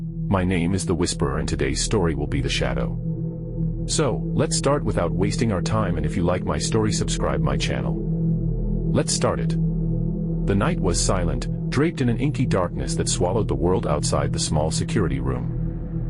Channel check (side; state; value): both; identical; correlation 1.00